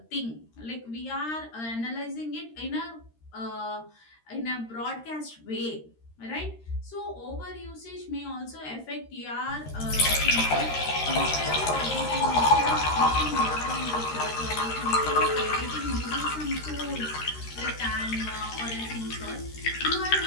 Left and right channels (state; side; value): late; right; 13 ms